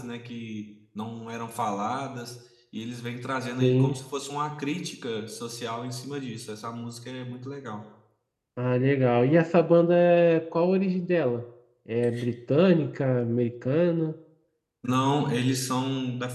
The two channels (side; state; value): both; identical; correlation 1.00